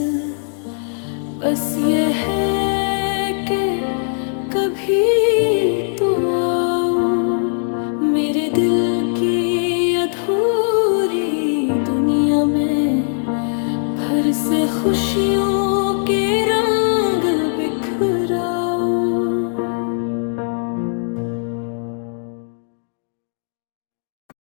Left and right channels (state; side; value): silent; right; digital silence